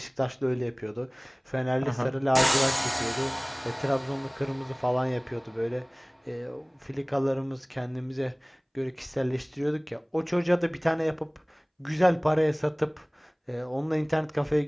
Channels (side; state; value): both; identical; correlation 1.00